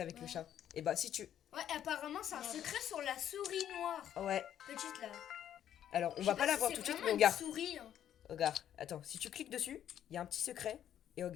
avec le chat? Et bah, si tu. Ouais, apparemment, c'est un secret sur la souris noire. Ouais. Petite là. Alors, on Je va sais pas la si voir c'est tout de suite, vraiment mais une regarde. souris. Hein. Regarde, attends, si tu cliques dessus, il y a un petit secret. Et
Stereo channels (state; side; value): quieter; right; 10.5 dB